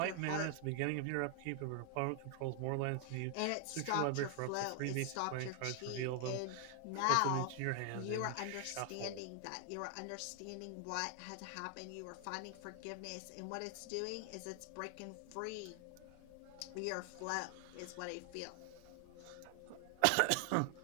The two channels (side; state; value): both; different; correlation 0.00